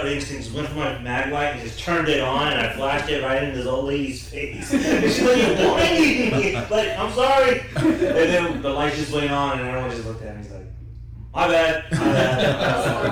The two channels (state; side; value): identical; both; correlation 1.00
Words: instinct went for my mag light and just turned it on, and I flashed it right into this old lady's face. And she's like, "You're blinding me!" Like, I'm sorry. And then the light just went on, and everyone just looked at me. He's like, "My bad, my bad."